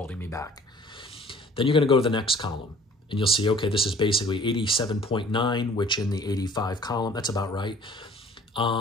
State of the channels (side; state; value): both; normal; correlation 0.52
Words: me back. Then you're going to go to the next column and you'll see, okay, this is basically 87.9, which in the 85 column, that's about right.